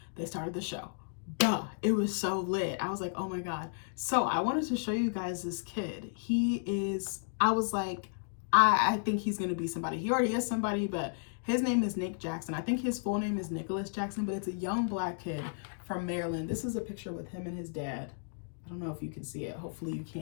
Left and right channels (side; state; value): right; silent; digital silence